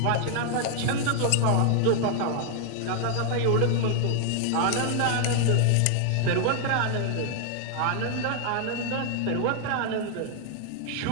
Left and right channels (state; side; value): different; both; correlation 0.00